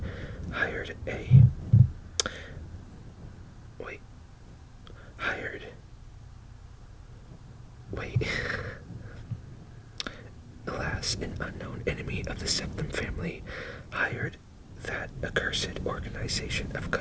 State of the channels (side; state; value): both; identical; correlation 1.00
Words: hired an unknown enemy of the Septim family hired that accursed organization of